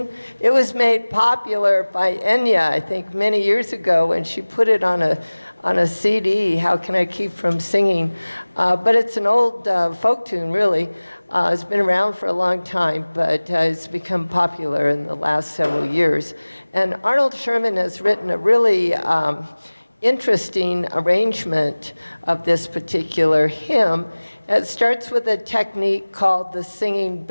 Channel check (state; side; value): inverted; both; correlation -1.00